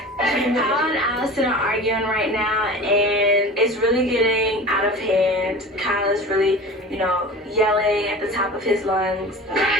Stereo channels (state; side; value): normal; both; correlation 0.36